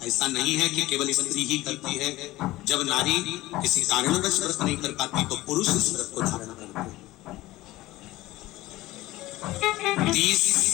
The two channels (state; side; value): quieter; right; 17.7 dB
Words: ऐसा नहीं है कि केवल स्त्री ही करती है। जब नारी किसी कारणवश व्रत नहीं कर पाती तो पुरुष इस व्रत को धारण करते हैं। 30